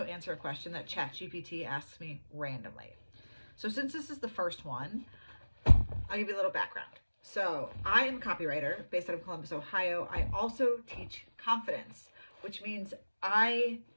answer a question that ChatGPT asks me randomly. So since this is the first one, I'll give you a little background. So I am a copywriter based out of Columbus, Ohio. I also teach confidence, which means I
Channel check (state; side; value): inverted; both; correlation -1.00